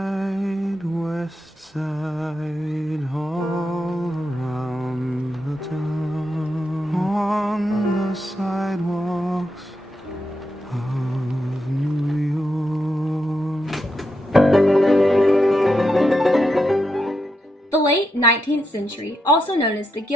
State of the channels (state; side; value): normal; both; correlation 0.84